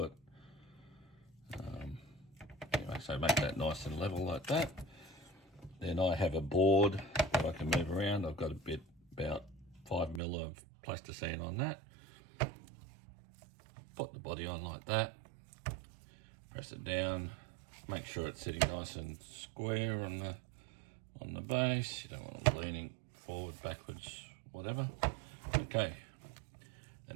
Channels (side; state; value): left; drops out; at 10.2 s